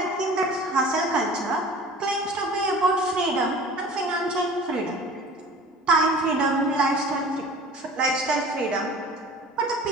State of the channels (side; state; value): both; normal; correlation 0.43